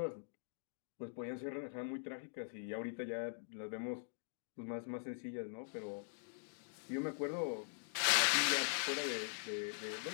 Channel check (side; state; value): right; silent; digital silence